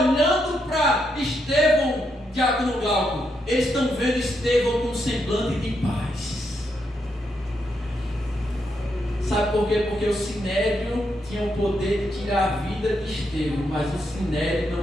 para Estevão, Diácono Glauco, eles estão vendo Estevão com um semblante de paz. Sabe por quê? Porque o sinédrio tinha o poder de tirar a vida de Estevão, mas o sinédrio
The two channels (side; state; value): both; normal; correlation 0.80